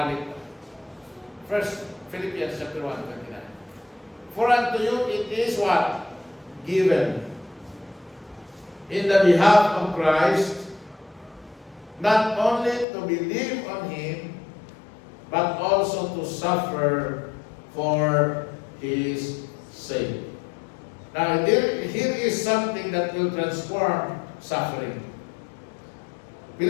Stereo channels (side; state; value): right; drops out; at 12.9 s